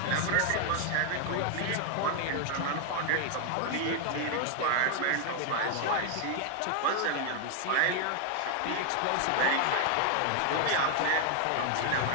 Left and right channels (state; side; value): different; both; correlation 0.00